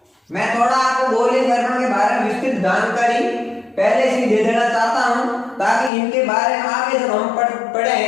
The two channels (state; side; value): drops out; right; at 5.9 s